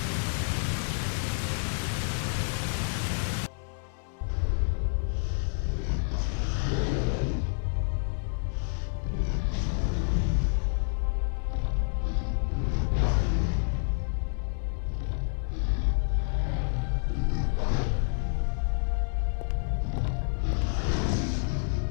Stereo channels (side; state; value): right; silent; digital silence